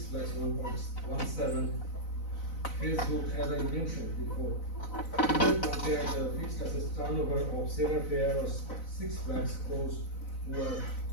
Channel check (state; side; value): late; right; 4.0 ms